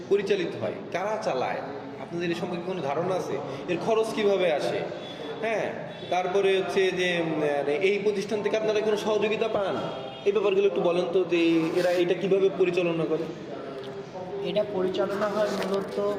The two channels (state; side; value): identical; both; correlation 1.00